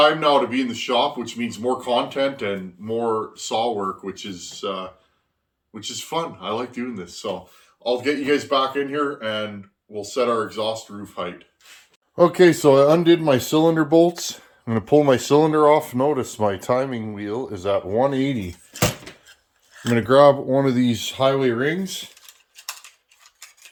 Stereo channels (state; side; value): identical; both; correlation 1.00